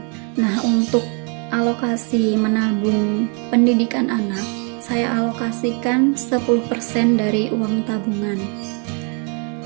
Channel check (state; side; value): quieter; left; 37.8 dB